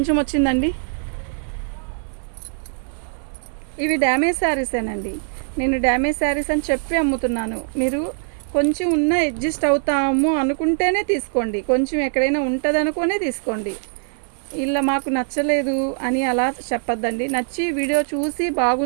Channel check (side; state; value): left; silent; digital silence